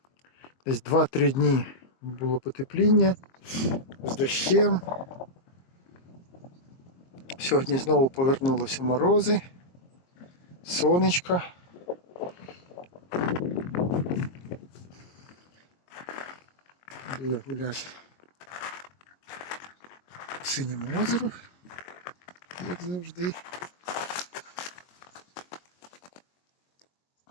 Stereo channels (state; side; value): late; right; 22 ms